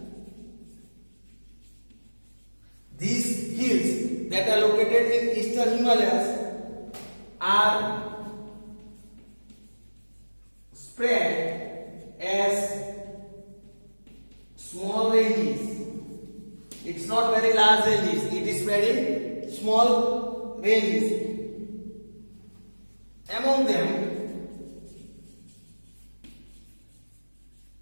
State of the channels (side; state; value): both; inverted; correlation -1.00